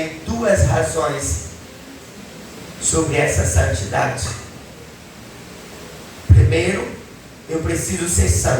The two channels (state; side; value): identical; both; correlation 1.00